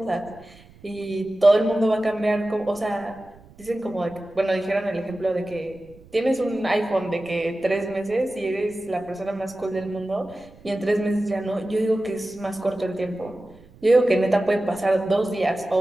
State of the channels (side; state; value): right; noise; rumble, 24 dB below the sound